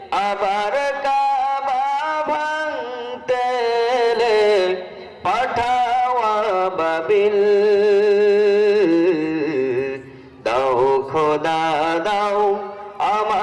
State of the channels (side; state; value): both; identical; correlation 1.00